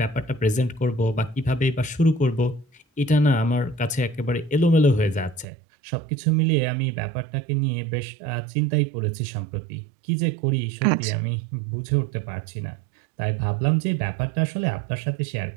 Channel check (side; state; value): left; drops out; at 5.5 s